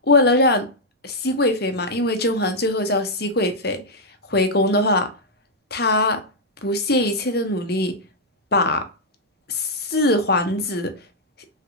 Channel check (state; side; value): normal; both; correlation -0.05